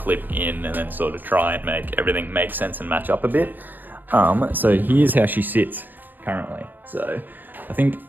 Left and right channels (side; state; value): left; late; 0.088 ms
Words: in and then sort of try and make everything make sense and match up a bit. So here's how she sits currently. So I think